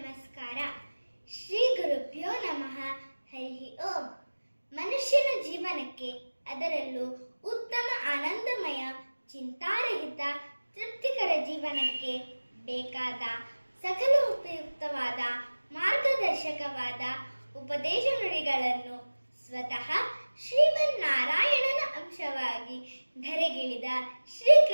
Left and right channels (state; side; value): inverted; both; correlation -1.00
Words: ಶ್ರೀ ಗುರುಭ್ಯೋ ನಮಃ. ಹರಿ ಓಂ. ಮನುಷ್ಯನ ಜೀವನಕ್ಕೆ, ಅದರಲ್ಲೂ ಉತ್ತಮ ಆನಂದಮಯ ಚಿಂತಾರಹಿತ ತೃಪ್ತಿಕರ ಜೀವನಕ್ಕೆ ಬೇಕಾದ ಸಕಲ ಉಪಯುಕ್ತವಾದ ಮಾರ್ಗದರ್ಶಕವಾದ ಉಪದೇಶ ನುಡಿಗಳನ್ನು ಸ್ವತಃ ಶ್ರೀಮನ್ನಾರಾಯಣನ ಅಂಶವಾಗಿ ಧರೆಗಿಳಿದ